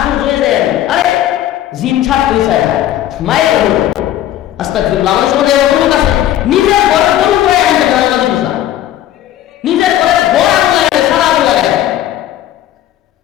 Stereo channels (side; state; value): right; quieter; 12.6 dB